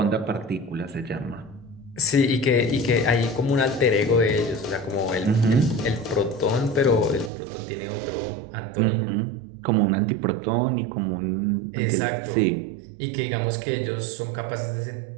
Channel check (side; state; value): left; drops out; at 7.3 s